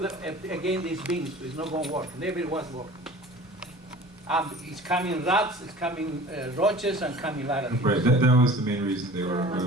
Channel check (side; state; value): both; normal; correlation 0.43